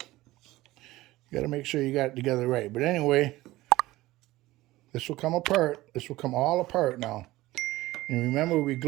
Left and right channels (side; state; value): left; quieter; 17.8 dB